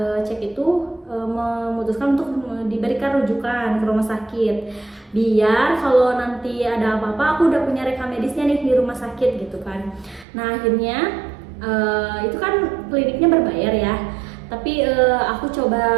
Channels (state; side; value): drops out; left; at 10.2 s